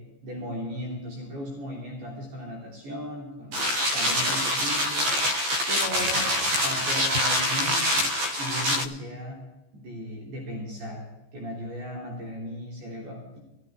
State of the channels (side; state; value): left; late; 14 ms